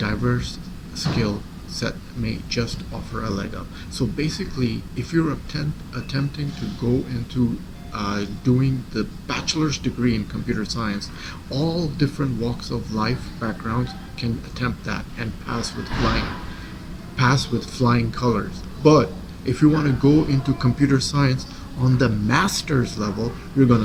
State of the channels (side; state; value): both; identical; correlation 1.00